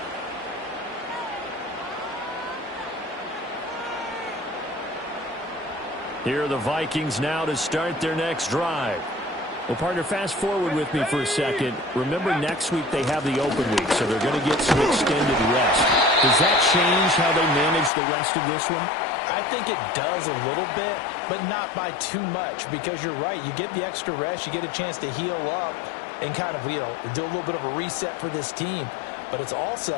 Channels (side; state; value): right; drops out; at 17.9 s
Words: Here are the Vikings now to start their next drive. Well, partner, fast forward with me for a second. Remember, next week they have the open week, so they're going to get some extended rest. Does that change how they manage the rest of this one? I think it does a little bit, but not by too much, because you're right. You get the extra rest. You get a chance to heal up and kind of, do a little bit of a reset for this team. But it's